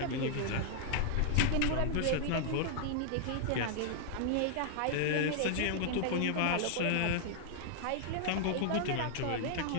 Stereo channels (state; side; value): different; both; correlation -0.01